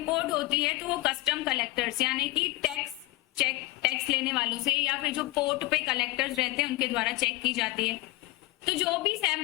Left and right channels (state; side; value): quieter; right; 19.9 dB